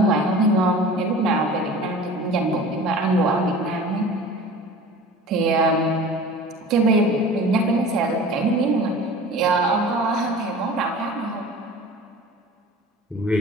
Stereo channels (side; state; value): both; normal; correlation 0.40